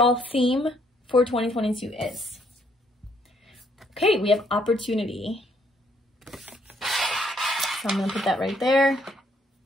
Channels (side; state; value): both; normal; correlation 0.69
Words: theme for 2022 is. Okay, we have opportunity. So I'm going to put that right there,